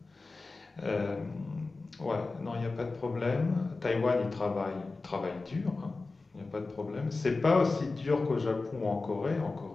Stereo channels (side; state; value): right; quieter; 3.6 dB